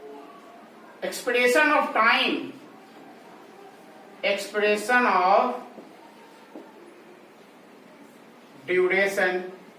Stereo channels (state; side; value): identical; both; correlation 1.00